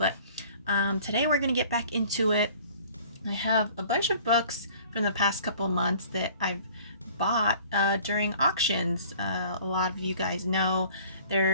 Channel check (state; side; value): inverted; both; correlation -0.51